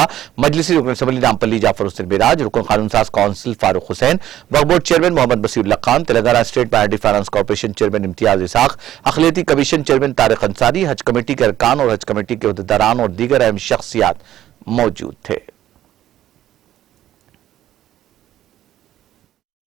मजलिसी रुकन असम्बली नामपल्ली जाफर हुसैन मिराज, रुकन कानून साज काउंसिल फारूक हुसैन, वक्फ board chairman Mohammed Basheerullah Khan, Telangana state minority finance corporation chairman Imtiaz Ishaq, अखिलती commission chairman Tariq Ansari, Haj committee के अरकान और हज कमेटी के उहदेदारान और दीगर अहम शख्सियात मौजूद थे।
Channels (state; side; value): quieter; left; 12.6 dB